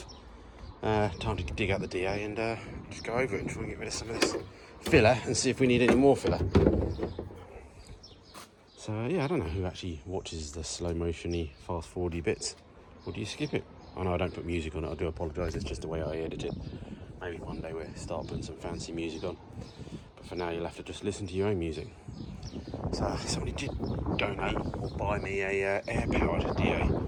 Time to dig out the DA and just go over it and try and get rid of some of this filler and see if we need any more filler. So yeah, I don't know who actually watches the slow motion-y, fast forwardy bits. Or do you skip it? I know I don't put music on it, I do apologise, it's just the way I edit it. Maybe one day we'll start putting some fancy music on. But for now you'll have to just listen to your own music. So somebody did donate or buy me a air-powered DA.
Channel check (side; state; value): both; identical; correlation 1.00